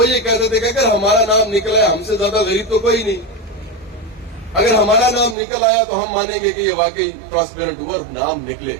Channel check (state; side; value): drops out; left; at 5.4 s